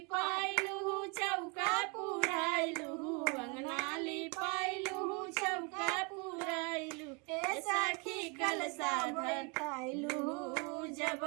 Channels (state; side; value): quieter; left; 32.7 dB